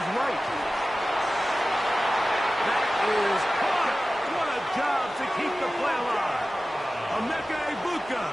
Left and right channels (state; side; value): normal; both; correlation 0.96